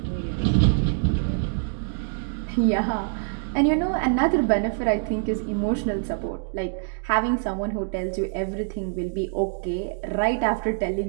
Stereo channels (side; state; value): left; silent; digital silence